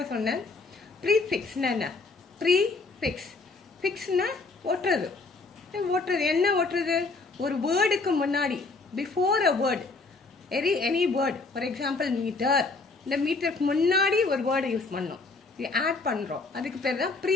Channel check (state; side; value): quieter; right; 3.8 dB